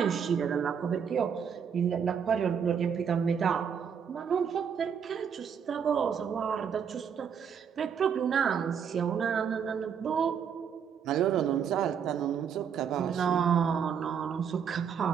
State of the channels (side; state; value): left; quieter; 7.4 dB